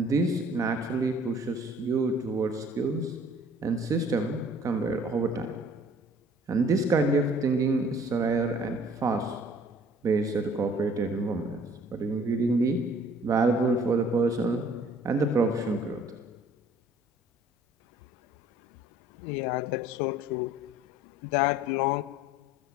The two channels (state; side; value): normal; both; correlation 0.54